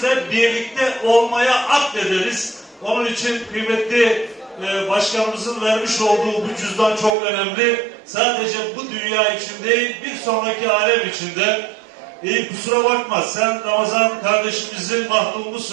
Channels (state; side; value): drops out; left; at 7.2 s